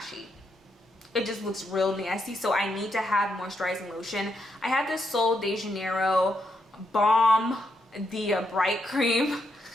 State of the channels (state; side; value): normal; both; correlation 0.80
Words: It just looks real nasty. So I need to have moisturizing lotion. I have this Sol de Janeiro Balm, the Bright Cream.